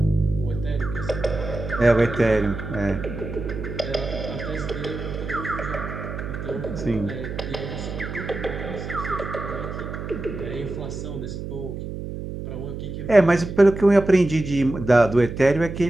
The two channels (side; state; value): right; noise; hum, 7 dB below the sound